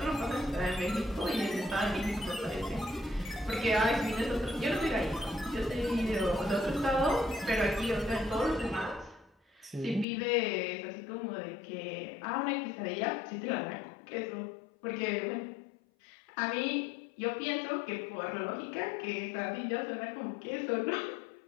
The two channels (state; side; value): drops out; right; at 10.1 s